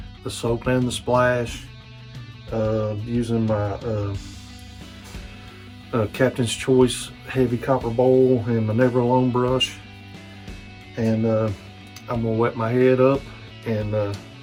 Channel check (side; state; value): both; identical; correlation 1.00